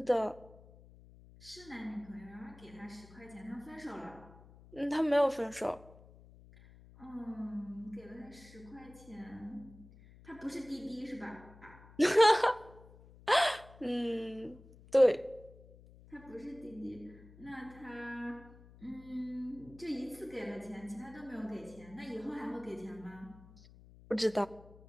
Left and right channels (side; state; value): left; noise; hum, 21 dB below the sound